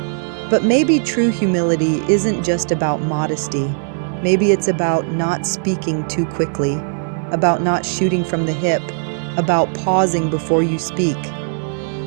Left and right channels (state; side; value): silent; left; digital silence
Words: But maybe true humility isn't just about modesty. Maybe it's about not speaking too quickly, about not shooting from the hip, about pausing before you speak.